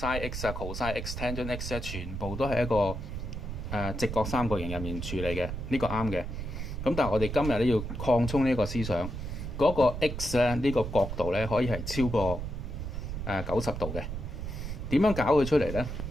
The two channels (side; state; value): right; noise; rumble, 6 dB below the sound